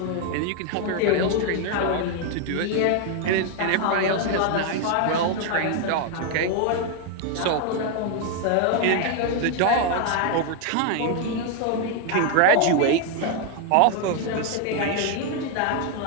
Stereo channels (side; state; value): both; different; correlation 0.01